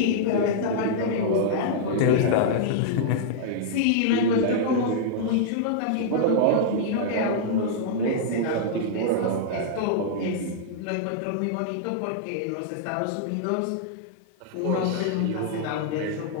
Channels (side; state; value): both; different; correlation -0.02